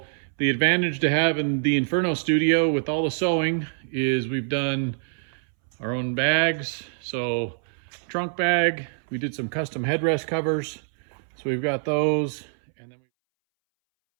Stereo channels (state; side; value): silent; left; 62 dB below the other